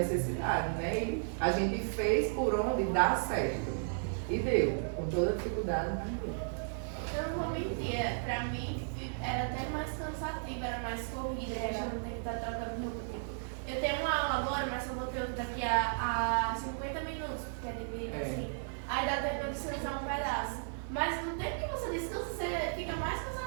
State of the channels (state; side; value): silent; left; 55 dB below the other